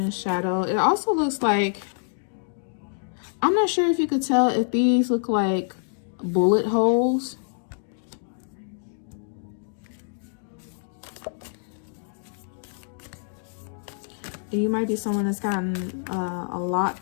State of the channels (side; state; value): right; silent; digital silence